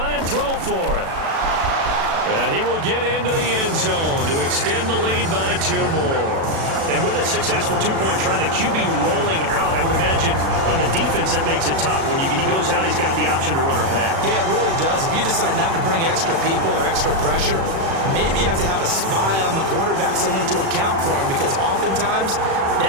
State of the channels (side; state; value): left; late; 36 ms